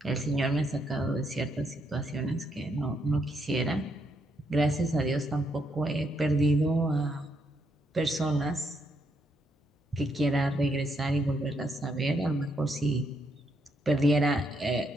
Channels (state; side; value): normal; both; correlation 0.77